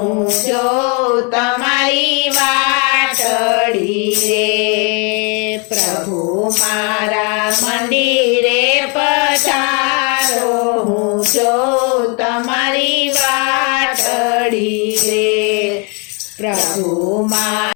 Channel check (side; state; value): right; quieter; 34.2 dB